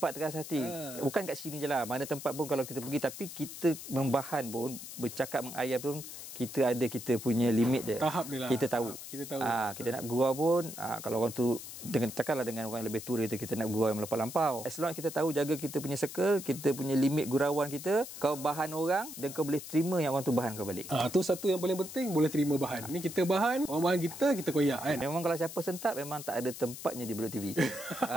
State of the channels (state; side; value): noise; left; hiss, 11 dB below the sound